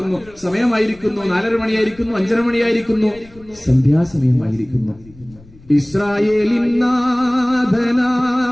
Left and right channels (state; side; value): noise; left; rumble, 24 dB below the sound